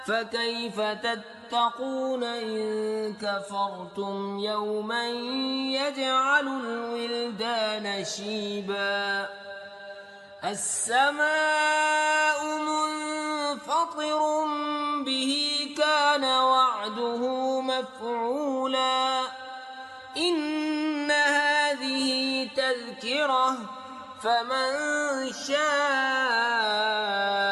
فكيف تتقون إن كفرتم يوما يجعل الولدان شيبا السماء منفطر به كان وعده مفعولا إن هذه تذكرة فمن شاء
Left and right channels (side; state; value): both; identical; correlation 1.00